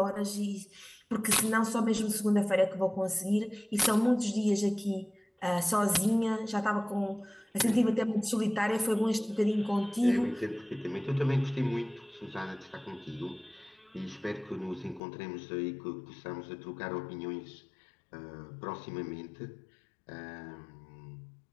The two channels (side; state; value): right; drops out; at 15.0 s